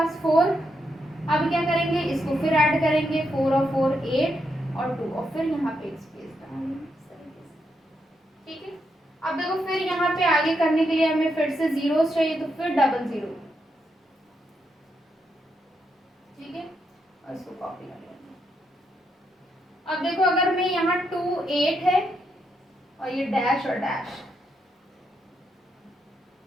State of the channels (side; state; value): both; normal; correlation 0.81